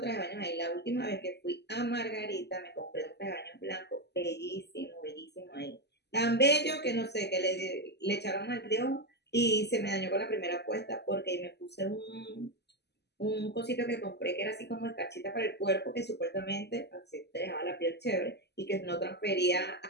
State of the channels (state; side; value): late; right; 0.49 ms